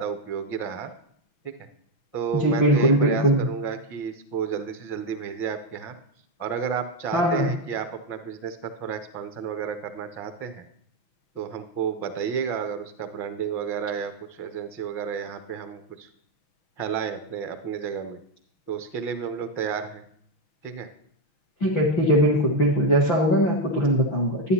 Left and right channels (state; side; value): late; right; 6.1 ms